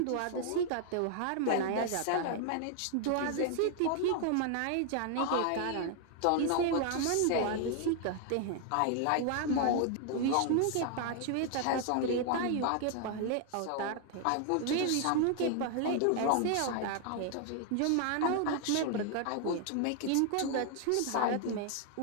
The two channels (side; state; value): both; different; correlation 0.00